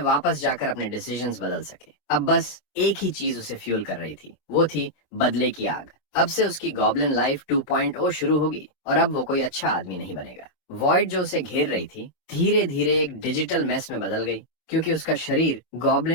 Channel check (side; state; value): right; late; 24 ms